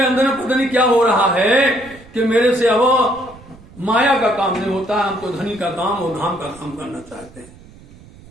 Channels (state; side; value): noise; right; rumble, 22 dB below the sound